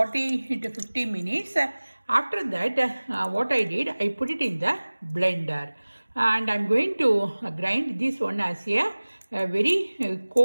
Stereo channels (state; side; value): inverted; both; correlation -1.00